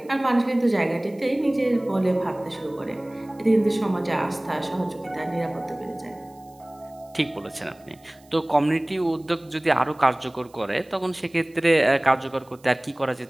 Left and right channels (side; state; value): right; noise; hiss, 30 dB below the sound